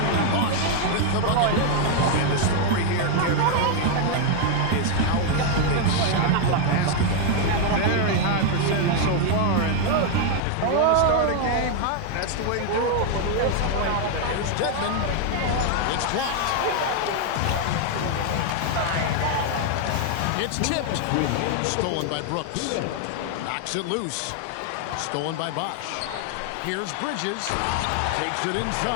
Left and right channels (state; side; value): different; both; correlation 0.00